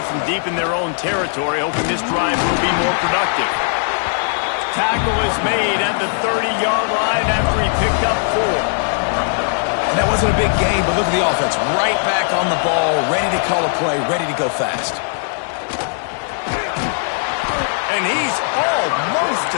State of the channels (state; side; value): silent; right; digital silence